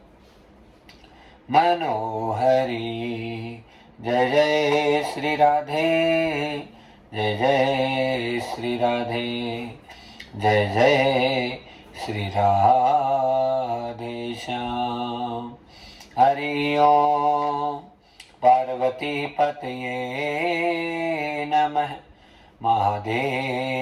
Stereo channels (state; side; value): identical; both; correlation 1.00